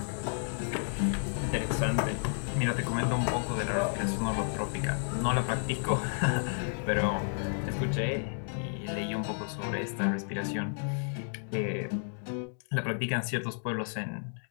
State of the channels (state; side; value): silent; right; digital silence